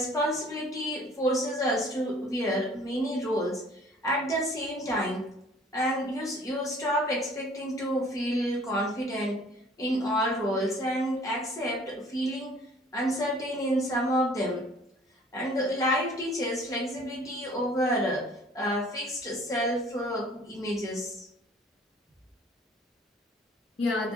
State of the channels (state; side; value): normal; both; correlation 0.53